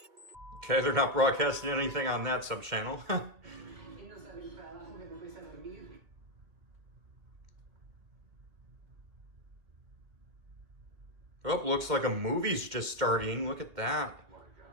Okay, they're not broadcasting anything on that sub-channel. Oh, looks like a movie's just starting. Look at that.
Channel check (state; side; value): late; left; 2.1 ms